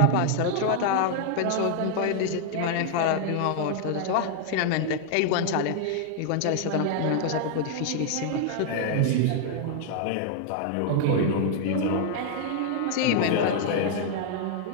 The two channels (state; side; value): different; both; correlation 0.00